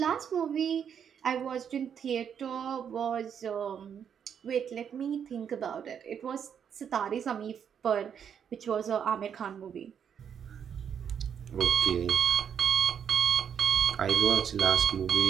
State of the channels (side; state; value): left; quieter; 8.0 dB